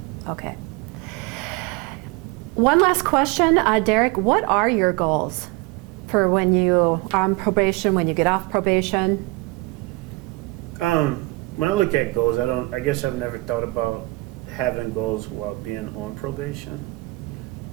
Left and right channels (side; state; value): left; quieter; 23.4 dB